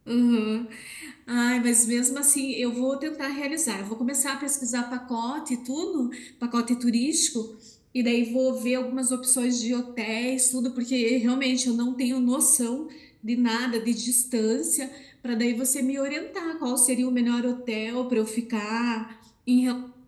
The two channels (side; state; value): both; identical; correlation 1.00